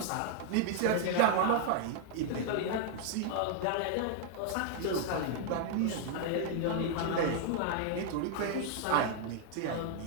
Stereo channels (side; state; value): both; different; correlation -0.01